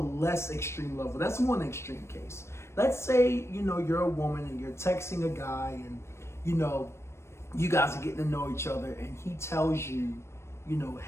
extreme level. That's one extreme case. Let's say, you're a woman and you're texting a guy and, you guys are getting to know each other, and he tells you,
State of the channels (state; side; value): late; right; 0.13 ms